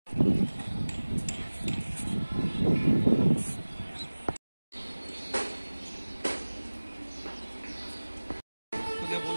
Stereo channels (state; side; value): inverted; both; correlation -1.00